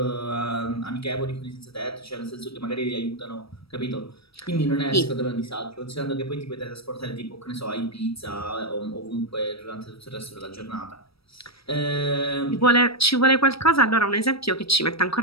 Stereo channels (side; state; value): right; late; 0.76 ms